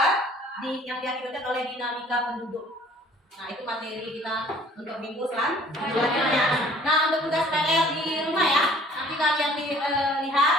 yang diakibatkan oleh dinamika penduduk. Nah, itu materi kita untuk minggu selanjutnya. Nah, untuk tugas PR di rumah ya, nanti kalian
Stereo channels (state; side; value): normal; both; correlation 0.54